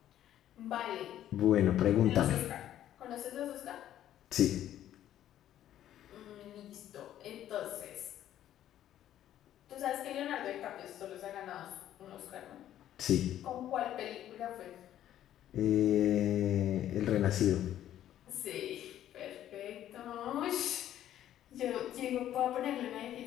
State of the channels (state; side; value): quieter; right; 11.8 dB